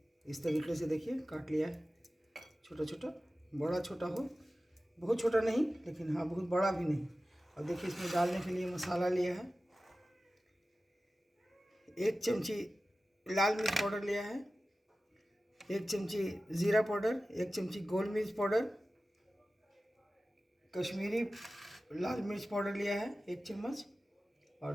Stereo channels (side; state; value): both; normal; correlation 0.95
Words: इस तरीके से देखिए काट लिया है, छोटा छोटा, बड़ा छोटा हो, बहुत छोटा नहीं लेकिन हाँ बहुत बड़ा भी नहीं। और देखिए, इसमें डालने के लिए मसाला लिया है। 1 चमची लाल मिर्च पाउडर लिया है, 1 चमची ज़ीरा पाउडर, 1 चमची गोल मिर्च पाउडर, कश्मीरी लाल मिर्च पाउडर लिया है 1 चम्मच। और